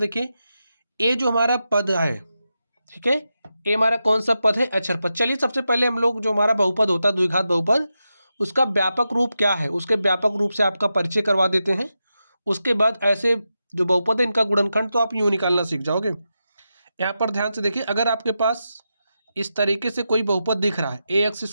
ये जो हमारा पद है, ठीक है, ये हमारा कौन सा पद है? अचर पद। चलिए सबसे पहले हम लोग जो हमारा बहुपद होता है द्विघात बहुपद, उसका व्यापक रूप क्या है, उसके व्यापक रूप से आपका परिचय करवा देते हैं। उसके बाद ऐसे जो बहुपद है इनका गुणनखंड तो आप यूँ निकालना सीख जाओगे। यहाँ पर ध्यान से देखिए, अगर आपके पास इस तरीके से कोई बहुपद दिख रहा है A X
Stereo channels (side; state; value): both; inverted; correlation -0.89